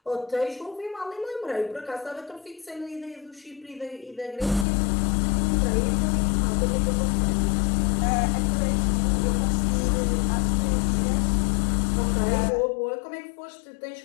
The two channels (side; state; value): right; drops out; at 4.7 s